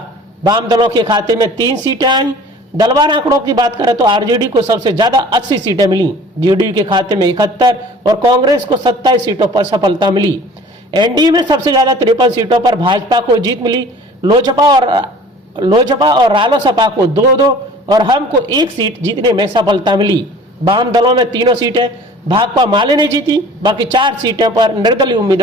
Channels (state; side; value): normal; both; correlation 0.47